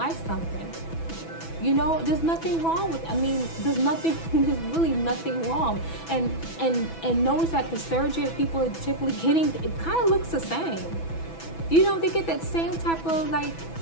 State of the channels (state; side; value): late; right; 6.1 ms